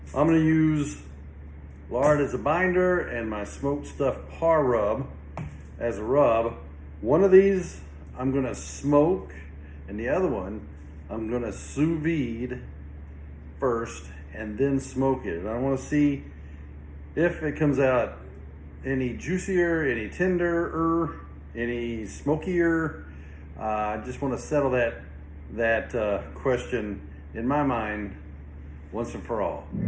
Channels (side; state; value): both; identical; correlation 1.00